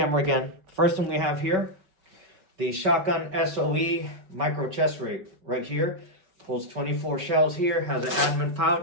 again. First thing we have here, the Shotgun SOE micro chest rig right here. Pulls 24 shells here, has an admin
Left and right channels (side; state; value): left; late; 5.3 ms